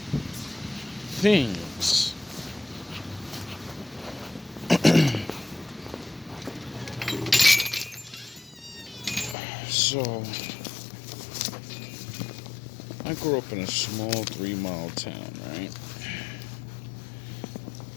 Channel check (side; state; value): right; drops out; at 9.3 s